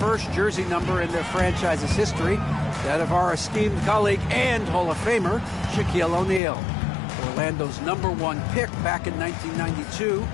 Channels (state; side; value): drops out; right; at 6.4 s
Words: jersey number in their franchise's history, that of our esteemed colleague and Hall of Famer, Shaquille O'Neal. Orlando's #1 pick back in 1992,